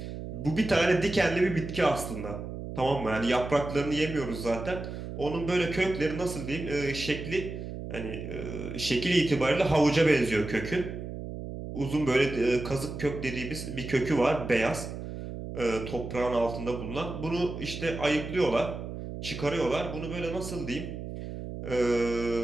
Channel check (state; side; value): noise; right; hum, 8 dB below the sound